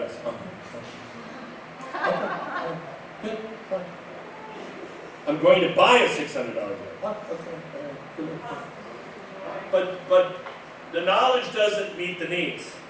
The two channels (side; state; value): both; identical; correlation 1.00